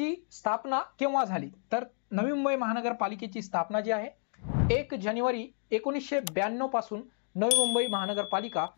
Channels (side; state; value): right; silent; 57 dB below the other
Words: स्थापना केव्हा झाली, तर नवी मुंबई महानगरपालिकेची स्थापना जी आहे 1 जानेवारी 1992 पासून नवी मुंबई महानगरपालिका